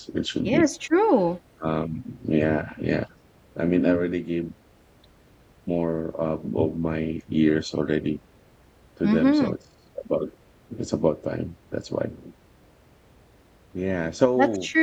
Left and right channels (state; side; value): identical; both; correlation 1.00